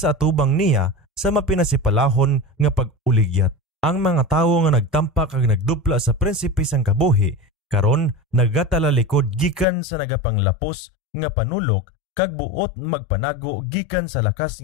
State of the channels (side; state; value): right; drops out; at 9.7 s